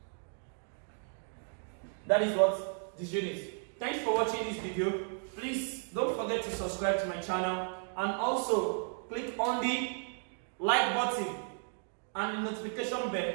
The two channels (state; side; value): silent; left; 55 dB below the other